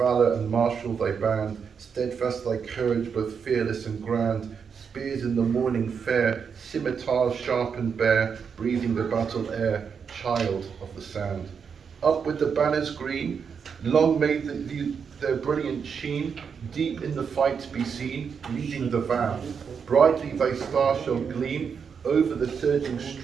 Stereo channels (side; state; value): left; quieter; 6.5 dB